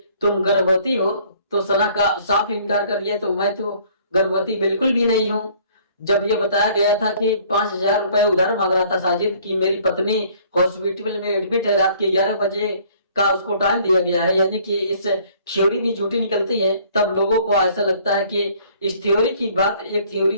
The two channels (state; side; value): inverted; both; correlation -0.58